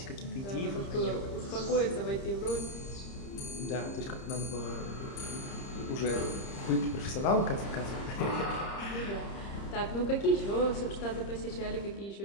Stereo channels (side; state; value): right; late; 30 ms